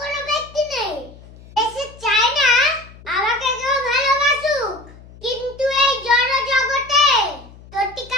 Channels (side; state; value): left; noise; hum, 21 dB below the sound